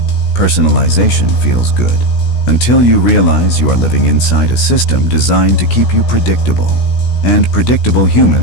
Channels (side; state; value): right; late; 16 ms